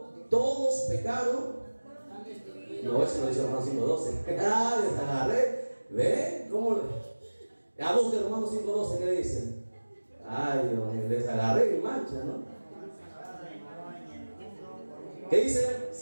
todos pecaron. No, eso no dice Romanos 5:12. Ah, les agarré. ¿Ven? ¿Cómo? A busquen Romanos 5:12, ¿qué dicen? Ay, Dios mío, les agarré y mancha, ¿no? ¿Qué dice,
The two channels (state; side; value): inverted; both; correlation -1.00